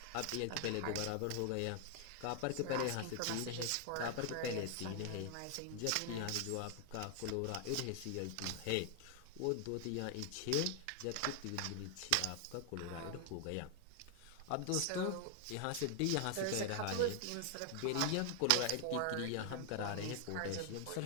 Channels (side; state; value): both; different; correlation 0.00